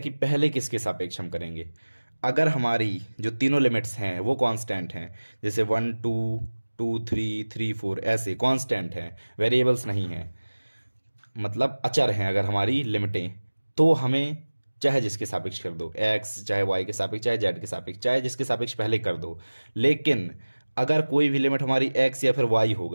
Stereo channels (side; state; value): both; inverted; correlation -1.00